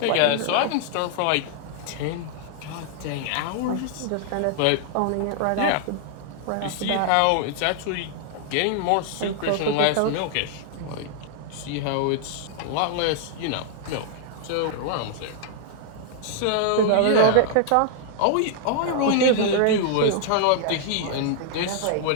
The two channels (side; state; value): both; different; correlation -0.01